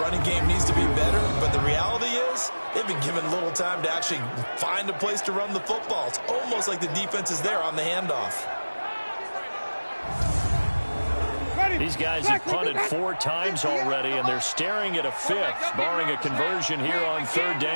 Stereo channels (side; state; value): both; inverted; correlation -1.00